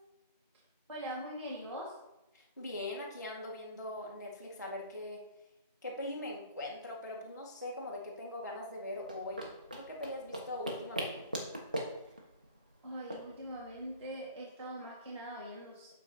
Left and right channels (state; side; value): inverted; both; correlation -0.41